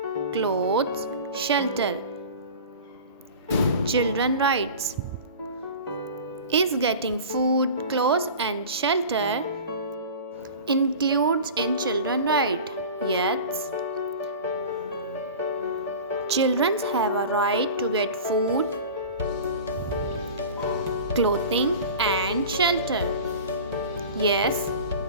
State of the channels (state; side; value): inverted; both; correlation -0.36